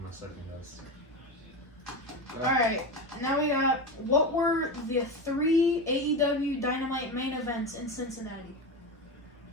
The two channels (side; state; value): both; normal; correlation 0.20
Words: my second guess. Alright, now we got, what were the 3 AEW Dynamite main events in Cincinnati?